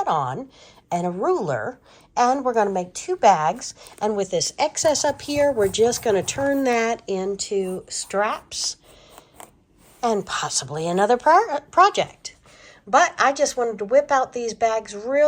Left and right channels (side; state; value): both; identical; correlation 1.00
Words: on and a ruler. And we're going to make two bags. And with this excess up here, we're just going to turn that into straps and possibly another project. But I just wanted to whip out these bags